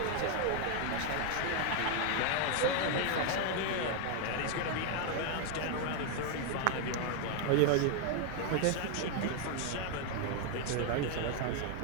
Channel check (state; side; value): different; both; correlation 0.01